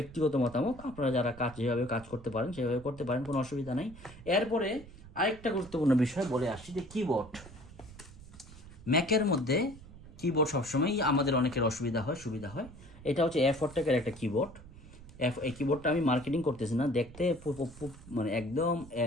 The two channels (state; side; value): noise; right; rumble, 18 dB below the sound